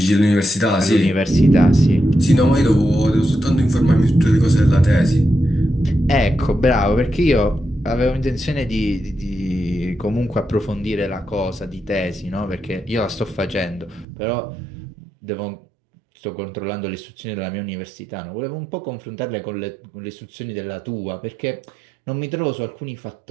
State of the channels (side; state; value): left; drops out; at 14.1 s